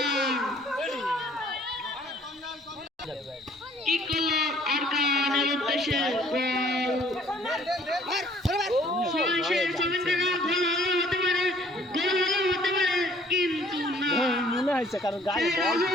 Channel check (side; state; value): both; normal; correlation 0.58